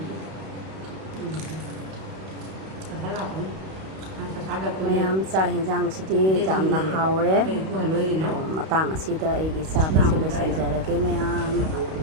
Kata lah kan. Kata ada pun. မယမ်စာဟင်ဂျန်စီတီဂျမ်နာဟောရဲ Ku haloi na. မတန်းစီတဲ့အီဂီစာပဲဆက်လို့စင်ကြရကေမယမ်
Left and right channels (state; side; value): late; left; 32 ms